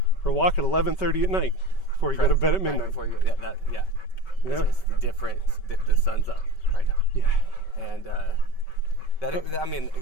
for a walk at 11:30 at night before you go to bed at midnight. Before you It's the difference. The sun's up right now. Yeah. And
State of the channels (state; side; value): late; right; 5.2 ms